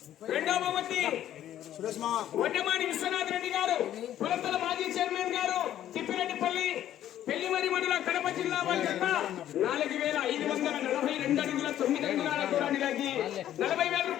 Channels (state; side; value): quieter; right; 11.8 dB